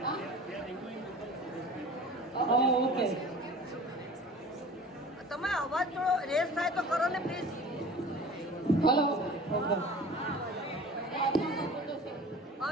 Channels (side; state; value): both; normal; correlation 0.41